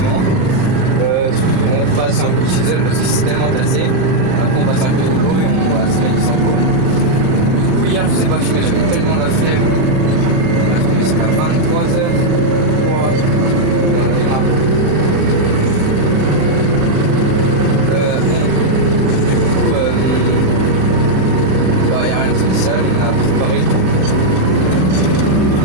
On passe un coup de Chisel parce que c'est tellement tassé. Après on passe un peu de rouleau et on va se mettre sur le coup. Du coup hier je sais pas filmer, j'avais tellement la flemme. On a commencé à 23h. On a démarré. Il n'y a rien de spécial, on a préparé tout.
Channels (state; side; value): late; left; 39 ms